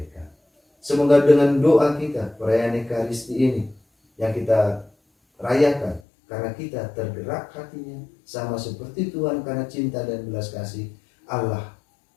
Semoga dengan doa kita, perayaan Ekaristi ini yang kita rayakan karena kita tergerak hatinya sama seperti Tuhan karena cinta dan belas kasih, Allah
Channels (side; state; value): right; drops out; at 6.0 s